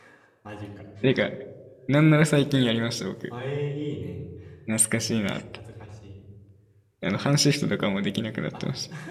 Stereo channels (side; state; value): both; identical; correlation 1.00